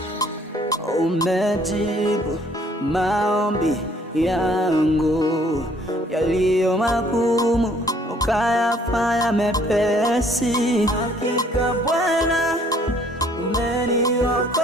umejibu maombi yangu yaliyo magumu, ukayafanya mepesi. Hakika Bwana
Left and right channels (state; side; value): normal; both; correlation 0.61